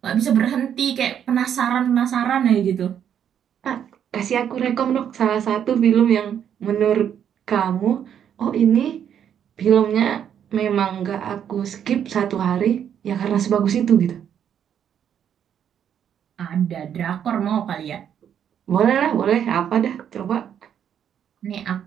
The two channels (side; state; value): left; quieter; 9.0 dB